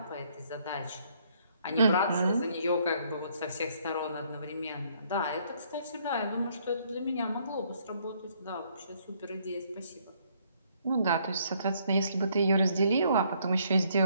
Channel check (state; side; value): inverted; both; correlation -0.67